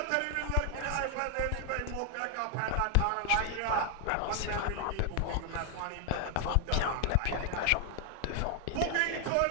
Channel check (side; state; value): both; different; correlation 0.00